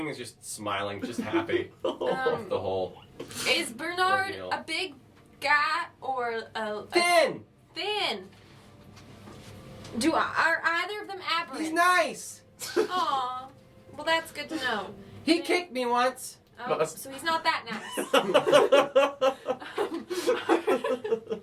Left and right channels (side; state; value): both; identical; correlation 1.00